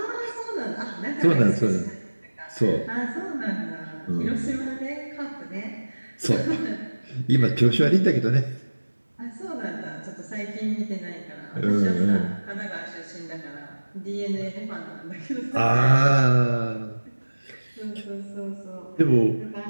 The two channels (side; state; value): both; inverted; correlation -1.00